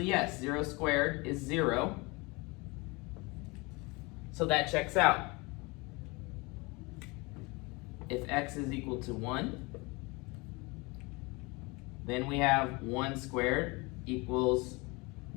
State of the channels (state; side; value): quieter; right; 26.2 dB